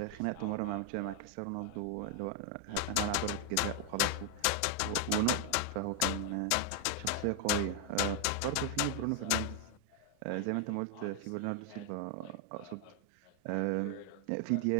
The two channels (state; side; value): different; both; correlation 0.00